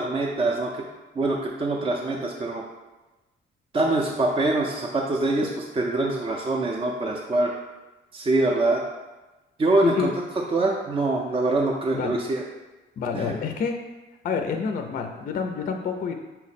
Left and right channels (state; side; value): normal; both; correlation 0.64